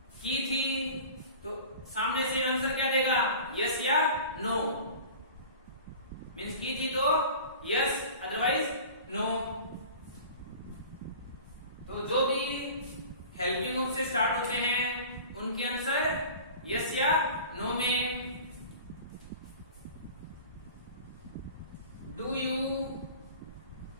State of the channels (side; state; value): both; inverted; correlation -0.40